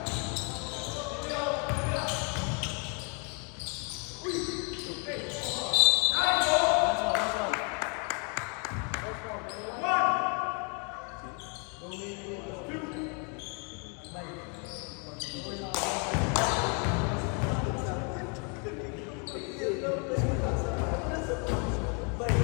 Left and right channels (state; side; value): quieter; right; 36.9 dB